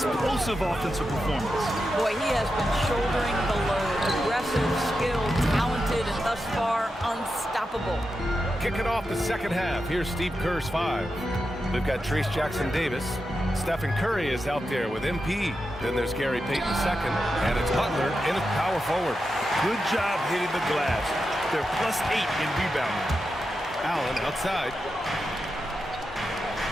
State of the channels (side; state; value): both; normal; correlation 0.89